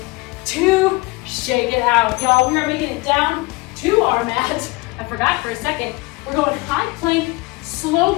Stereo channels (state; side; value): quieter; right; 23.7 dB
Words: 2, shake it out. Y'all, we are making it down to our mat. I forgot for a second. We're going high plank,